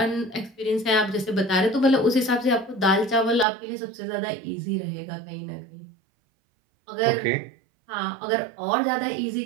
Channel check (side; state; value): left; drops out; at 3.5 s